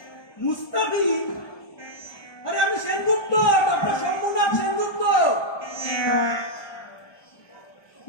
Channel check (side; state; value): right; late; 1.2 ms